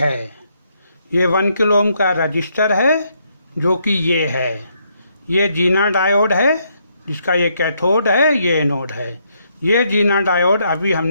ये 1 किलो ओम का रजिस्टर है जो कि ये है। ये जीना डायोड है जिसका ये कैथोड है, ये एनोड है। ये जीना डायोड अभी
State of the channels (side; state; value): both; inverted; correlation -0.74